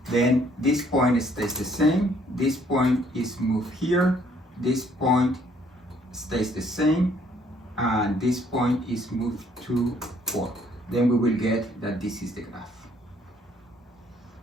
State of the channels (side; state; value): both; normal; correlation 0.64